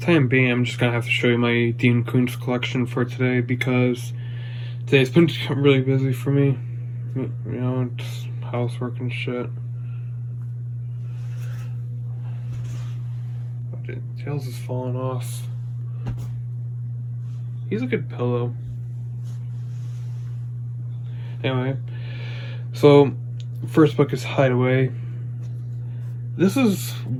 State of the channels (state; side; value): identical; both; correlation 1.00